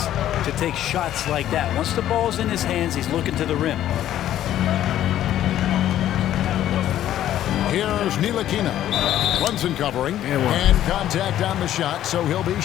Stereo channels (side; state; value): right; quieter; 12.1 dB